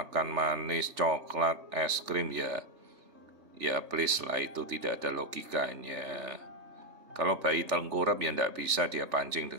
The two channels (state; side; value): late; left; 3.4 ms